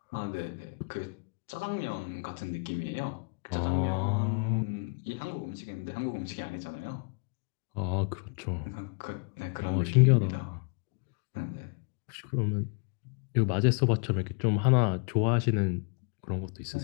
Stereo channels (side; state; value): right; quieter; 35.7 dB